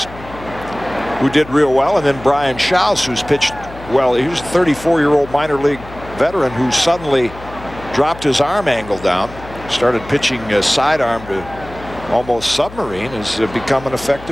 who did real well, and then Brian Schaus, who's pitched well. He was a 34-year-old minor league veteran who suddenly dropped his arm angle down, started pitching a sidearm to almost submarine, has become an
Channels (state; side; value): noise; left; hum, 16 dB below the sound